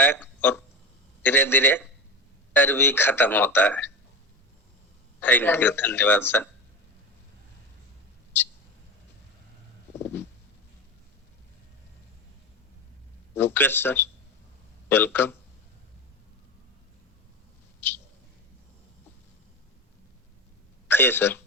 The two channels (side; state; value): both; normal; correlation 0.24